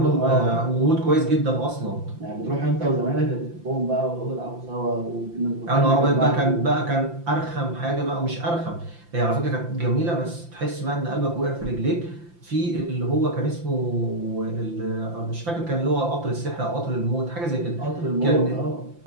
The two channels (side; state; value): left; late; 5.8 ms